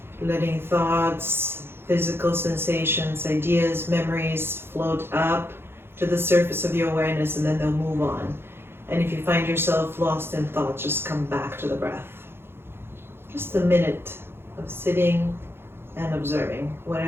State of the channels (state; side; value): late; left; 0.11 ms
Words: letting thoughts, physical sensations, ideas, memories float up to the surface of your awareness, and then they'll move on. And if you find yourself lost in thought, just come back to the breath. Just a minute of sitting and observing